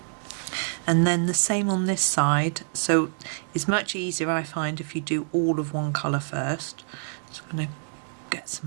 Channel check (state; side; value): silent; left; 61 dB below the other